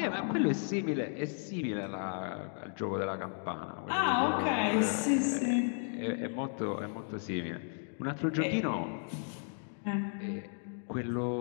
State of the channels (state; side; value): silent; right; 55 dB below the other